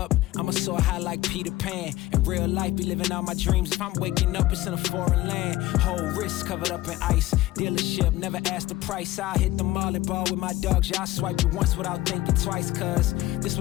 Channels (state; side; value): quieter; right; 16.7 dB